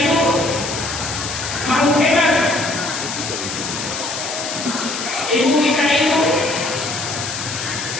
makhluk hebat. Ibu kita itu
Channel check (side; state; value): left; noise; hiss, 6 dB below the sound